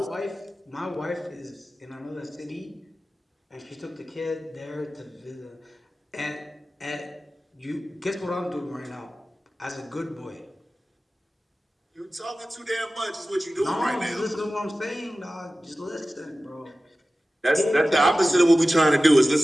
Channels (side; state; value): both; normal; correlation 0.95